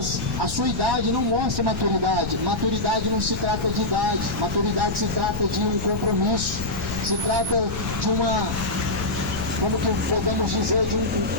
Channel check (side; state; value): left; noise; rumble, 6 dB below the sound